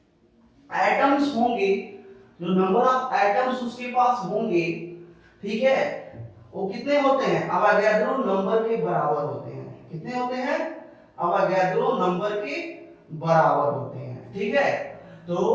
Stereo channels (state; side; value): identical; both; correlation 1.00